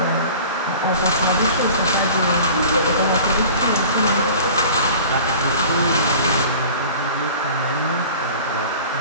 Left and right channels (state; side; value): inverted; both; correlation -0.42